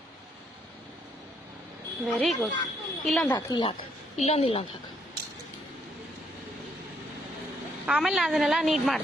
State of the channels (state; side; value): normal; both; correlation 0.72